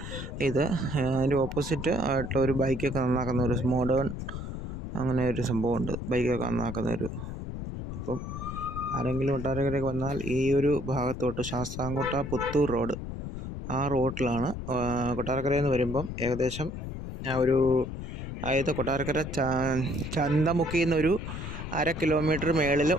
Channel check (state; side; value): noise; left; rumble, 7 dB below the sound